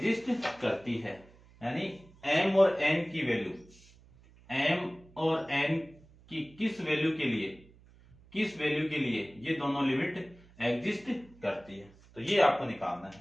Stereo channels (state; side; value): noise; right; hum, 25 dB below the sound